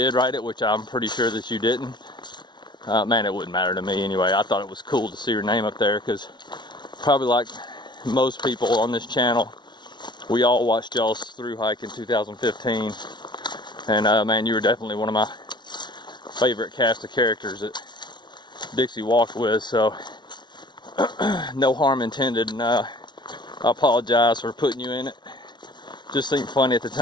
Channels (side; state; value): right; late; 0.21 ms